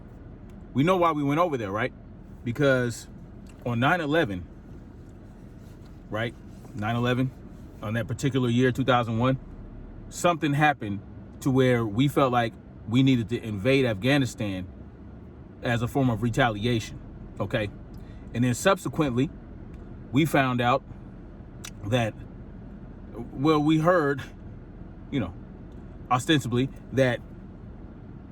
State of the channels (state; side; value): identical; both; correlation 1.00